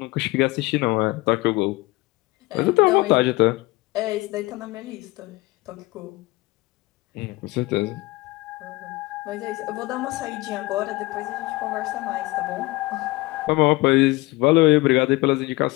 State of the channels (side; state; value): right; quieter; 21.5 dB